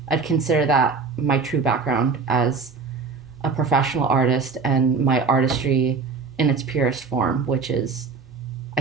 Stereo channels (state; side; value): quieter; left; 4.7 dB